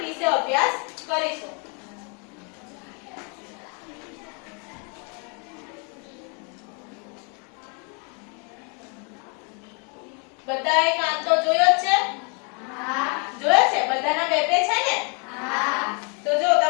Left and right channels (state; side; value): quieter; right; 36.3 dB